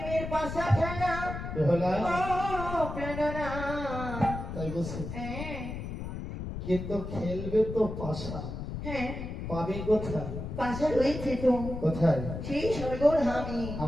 পাশা খেলা। বেহুলা, ও প্রেরণা। তাই বলছি। হ্যাঁ, কিন্তু খেলবে তো পাশা, হ্যাঁ, পাবে কোথায়? পাশা রয়েছে তো, কোথায়? সেই স্বর্গধামী।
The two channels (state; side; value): noise; left; rumble, 7 dB below the sound